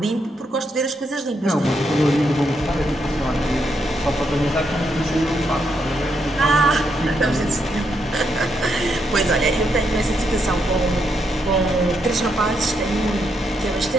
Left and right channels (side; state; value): both; normal; correlation 0.79